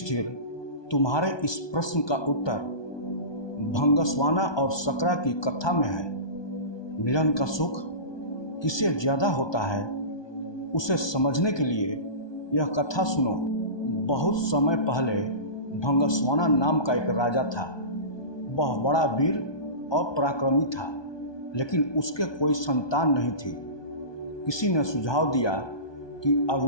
तुम्हारे इस प्रश्न का उत्तर भंगस्वाना और सकरा की कथा में है। मिलन का सुख किसे ज्यादा होता है, उसे समझने के लिए यह कथा सुनो। बहुत समय पहले भंगस्वाना नाम का एक राजा था। वह बड़ा वीर और पराक्रमी था, लेकिन उसके कोई संतान नहीं थी। किसी ने सुझाव दिया कि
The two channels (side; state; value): right; late; 1.2 ms